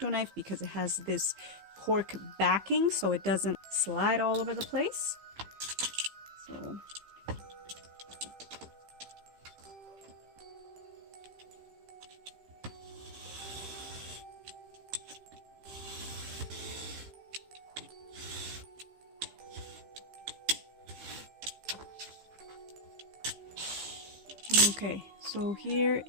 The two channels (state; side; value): late; left; 15 ms